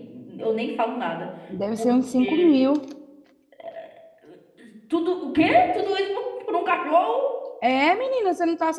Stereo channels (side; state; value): both; identical; correlation 1.00